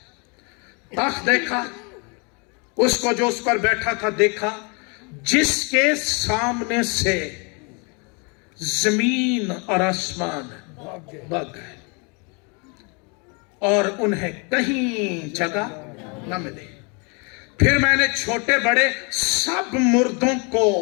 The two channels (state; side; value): quieter; right; 33.1 dB